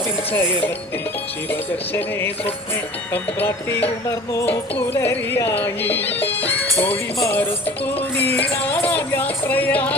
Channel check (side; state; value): both; normal; correlation 0.43